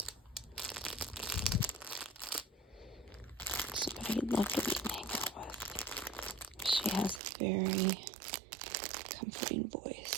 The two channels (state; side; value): drops out; left; at 7.2 s